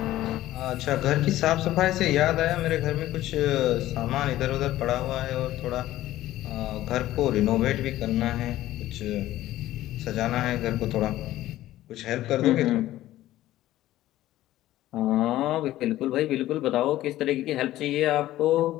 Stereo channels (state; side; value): quieter; right; 14.8 dB